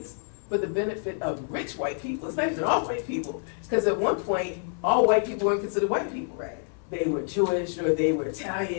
for the benefit of rich white people, it's not even all white people, because at one point, all white people weren't considered white people. Right. They were Jewish, or they were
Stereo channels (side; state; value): right; silent; 60 dB below the other